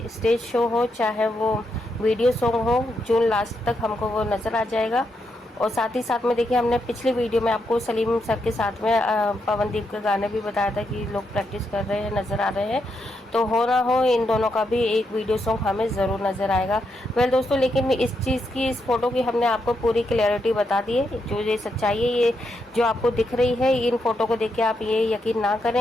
स्टेज शो हो चाहे वो वीडियो सॉन्ग हो, जून लास्ट तक हमको वो नज़र आ जाएगा। और साथ ही साथ में देखिए हमने पिछली वीडियो में आपको सलीम सर के साथ में पवनदीप के गाने भी बताया था कि लोग प्रैक्टिस कर रहे हैं, नज़र आ रहे हैं। तो हो ना हो इन दोनों का भी एक वीडियो सॉन्ग हमें ज़रूर नज़र आएगा। वेल दोस्तों, लेकिन इस चीज़ की, इस फोटो की हमने आपको पूरी क्लैरिटी बता दी है। जो ये सच्चाई है, ये जो आपको दिख रही है, इन फोटो को देख के आप ये यकीन ना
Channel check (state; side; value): normal; both; correlation 0.81